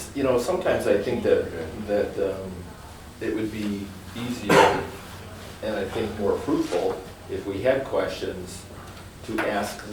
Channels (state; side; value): identical; both; correlation 1.00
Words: you know, sometimes I think that it would be easier and I think more fruitful if we had questions to ask